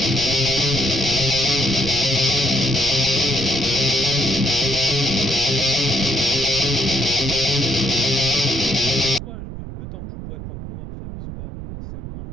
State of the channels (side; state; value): right; noise; rumble, 9 dB below the sound